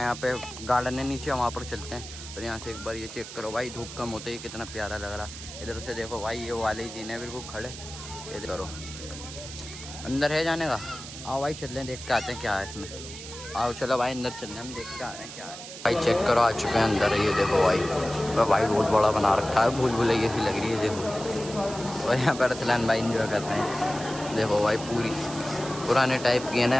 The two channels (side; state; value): right; noise; hiss, 12 dB below the sound